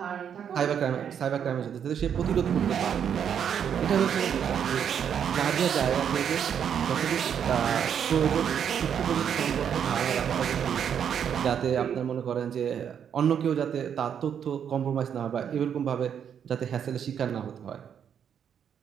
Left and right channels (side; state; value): left; quieter; 8.3 dB